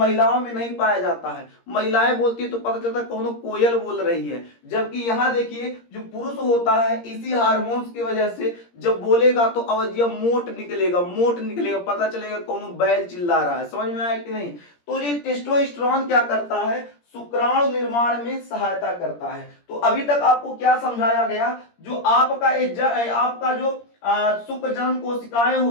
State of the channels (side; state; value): right; late; 17 ms